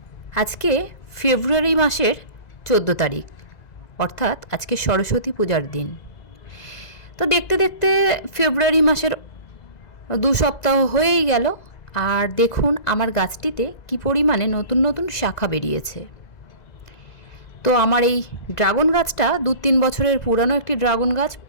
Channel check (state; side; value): late; right; 2.0 ms